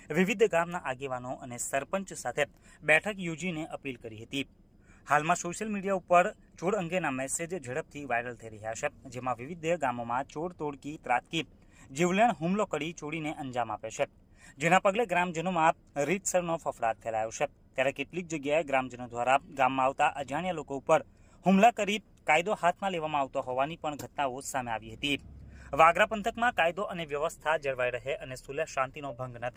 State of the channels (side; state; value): both; identical; correlation 1.00